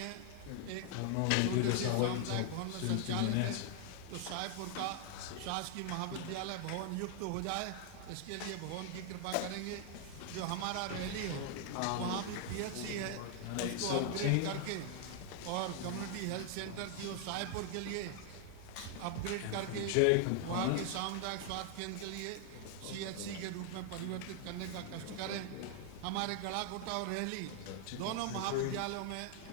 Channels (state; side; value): different; both; correlation 0.00